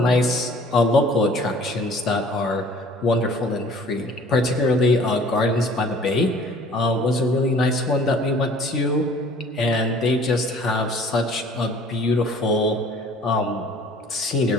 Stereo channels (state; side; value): normal; both; correlation 0.51